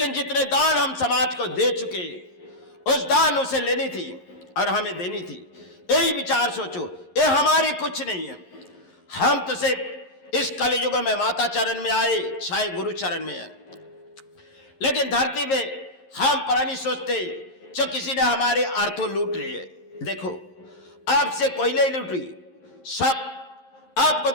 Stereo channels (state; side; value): late; right; 11 ms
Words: जितने दान हम समाज को दे चुके, उस दान उसे लेनी थी और हमें देनी थी। यही विचार सोचो, ये हमारी कुछ नहीं है। हम तो सिर्फ इस कलयुग में माता चरण में आए, चाहे गुरु चरण में है, लेकिन धरती पे हम पुरानी सोचते जो किसी ने हमारे अर्थों लूट लिए। देखो, आपसे कोई नहीं लूट रही, सब आपको